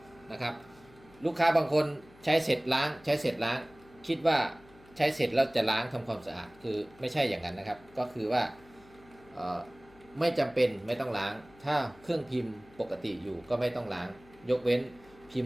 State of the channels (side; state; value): left; noise; hum, 25 dB below the sound